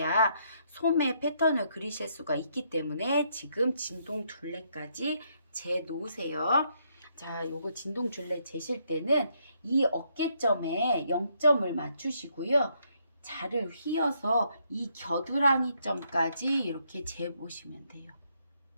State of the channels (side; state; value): both; inverted; correlation -0.74